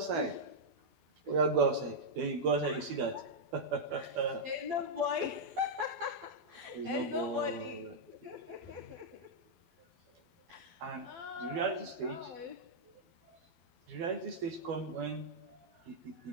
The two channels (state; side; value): late; left; 12 ms